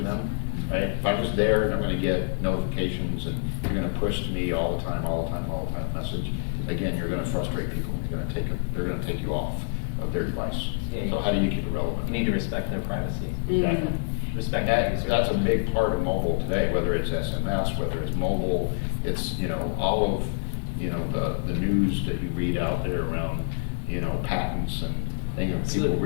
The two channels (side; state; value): right; silent; digital silence